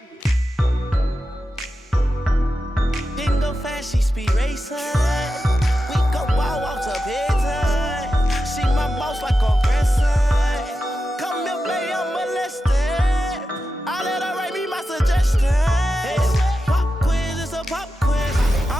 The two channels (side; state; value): both; normal; correlation 0.91